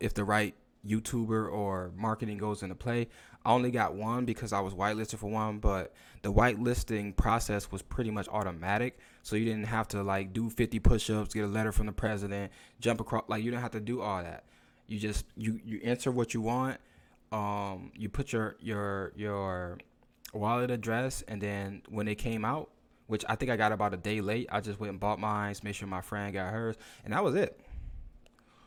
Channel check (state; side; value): identical; both; correlation 1.00